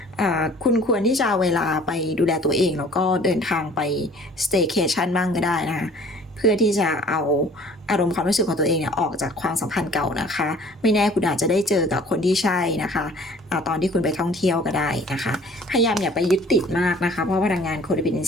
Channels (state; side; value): normal; both; correlation 0.51